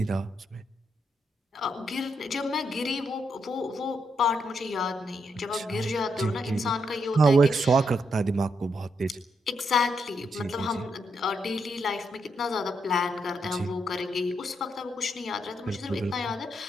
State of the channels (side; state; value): both; normal; correlation 0.79